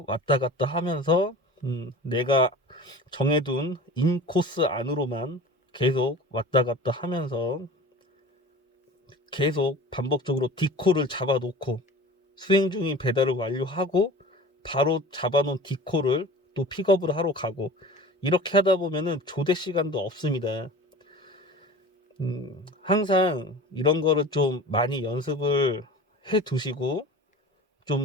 왔다 갔다 하면서 내가 정해둔 인코스 안으로만 계속 왔다 갔다 하면서 계속 반복적으로 디코를 잡아놓고 수행 중인 배달을 완료하고 바로 잡아놓은 디코를 또 픽업을 하러 가고 이렇게 하다 보면은 조대 시간도 없습니다. 항상 이런 거를 좀 많이 연습을 해 두시고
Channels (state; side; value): normal; both; correlation 0.38